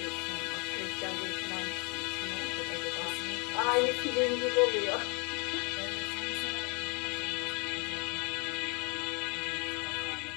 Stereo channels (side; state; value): right; quieter; 33.4 dB